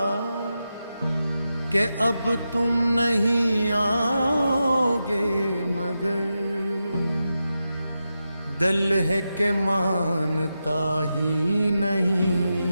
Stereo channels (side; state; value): both; inverted; correlation -0.89